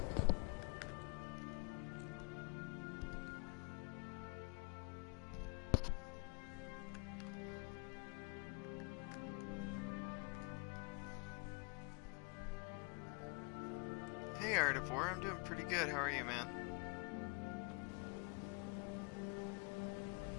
Hey Artivore, I'm doing pretty good. How are you, man?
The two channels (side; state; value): right; quieter; 32.2 dB